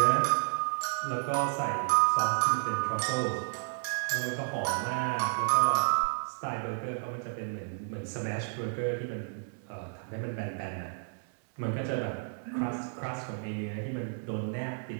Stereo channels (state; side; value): silent; left; 57 dB below the other